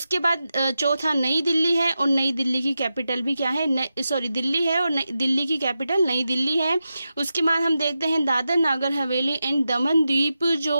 बाद चौथा नई दिल्ली है, और नई दिल्ली की कैपिटल भी क्या है? दिल्ली है, और दिल्ली की कैपिटल नई दिल्ली है। उसके बाद हम देखते हैं दादर नागर हवेली एंड दमन द्वीप,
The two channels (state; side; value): inverted; both; correlation -0.90